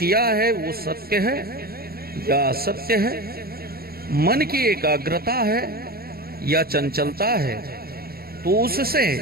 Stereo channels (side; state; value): left; late; 0.44 ms